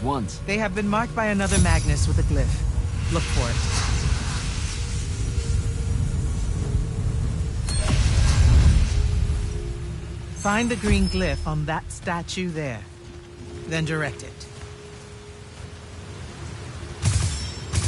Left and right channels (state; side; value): identical; both; correlation 1.00